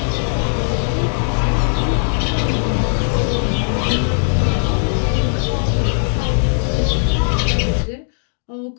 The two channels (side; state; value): right; silent; digital silence